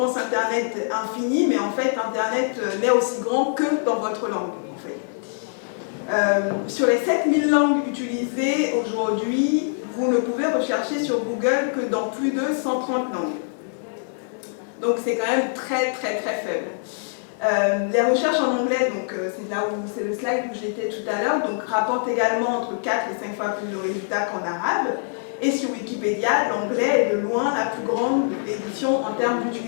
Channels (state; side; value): silent; right; digital silence